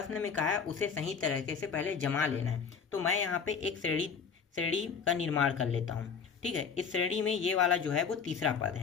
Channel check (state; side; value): quieter; right; 6.2 dB